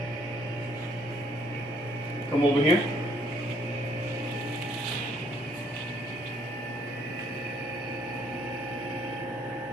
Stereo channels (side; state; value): both; normal; correlation 0.65